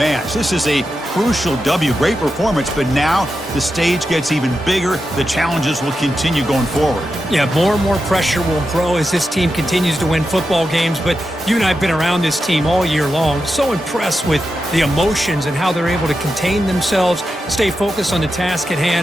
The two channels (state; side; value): normal; both; correlation 0.89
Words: This is a crucial W. Great performance, but now the stage gets even bigger. The challenges will continue going forward. Yeah, more and more pressure will grow as this team continues to win football games, but you and I have been around this team all year long. So impressed with the emotions and how they're able to contain themselves, stay focused on the task at